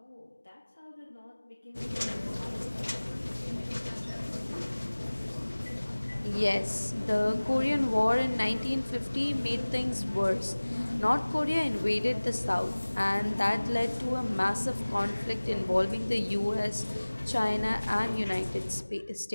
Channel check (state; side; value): inverted; both; correlation -1.00